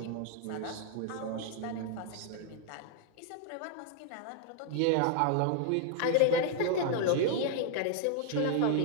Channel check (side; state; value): both; different; correlation 0.00